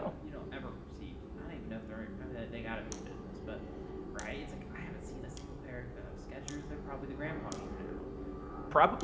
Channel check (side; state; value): both; identical; correlation 1.00